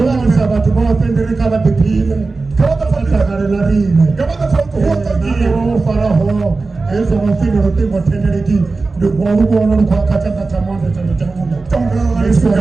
watu bawapendere kama bipile. Kama Takare la rime. kama tofauti huko Nani wao faraho. Eza wafino rote motenereki. Ndugu wana kwa kachanga chamanda chanda chamunda. Tonga Yesu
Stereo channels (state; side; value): quieter; left; 3.8 dB